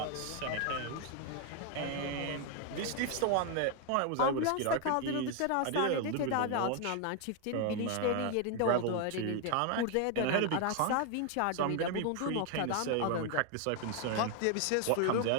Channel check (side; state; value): both; different; correlation 0.01